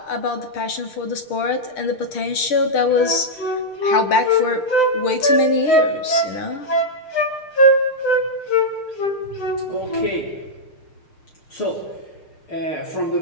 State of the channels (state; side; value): late; right; 6.6 ms